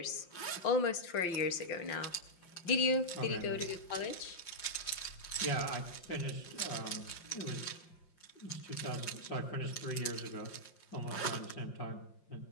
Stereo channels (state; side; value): late; right; 5.7 ms